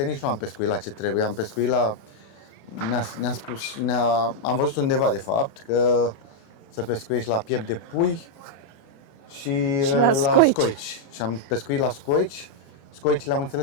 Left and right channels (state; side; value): late; right; 36 ms